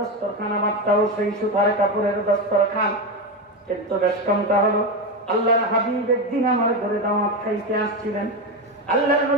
আমারটাও সেই সুতার কাপড়ের দস্তরখান। কিন্তু বেশ কমটা হলো আল্লাহর হাবিব একদিন আমার ঘরে দাওয়াত খাইতে আসছিলেন, আল্লাহর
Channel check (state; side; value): normal; both; correlation 0.14